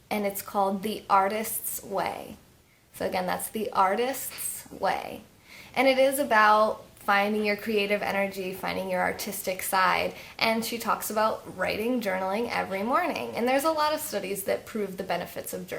and it's called The Artist's Way. So again, that's The Artist's Way. And it is about finding your creative energy, finding your artistic side, and she talks about writing, journaling every morning. And there's a lot of studies that prove the benefits of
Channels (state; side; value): identical; both; correlation 1.00